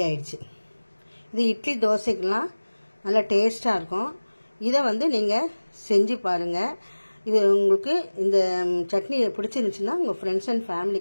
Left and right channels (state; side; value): inverted; both; correlation -1.00